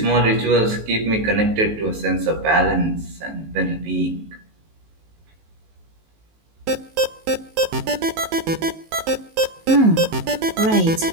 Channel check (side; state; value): left; late; 19 ms